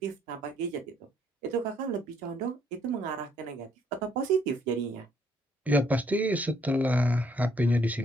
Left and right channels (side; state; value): both; normal; correlation 0.68